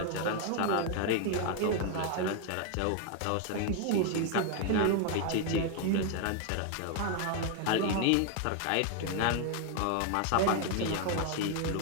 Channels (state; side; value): different; both; correlation 0.01